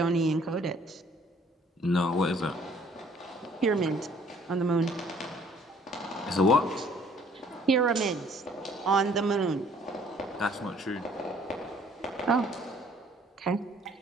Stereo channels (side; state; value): both; normal; correlation 0.59